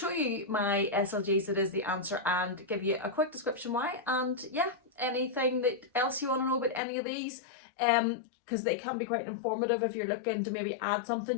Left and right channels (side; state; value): right; drops out; at 6.8 s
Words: you my SLGs that is the answer and give you a quick description why. And yeah, anything that else you want to know about any of these, because they can be quite informative. If you're looking to maybe add